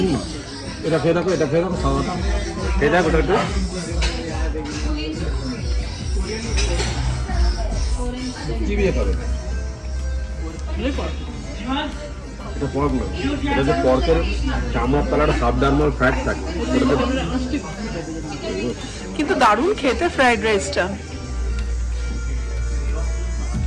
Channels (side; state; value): both; identical; correlation 1.00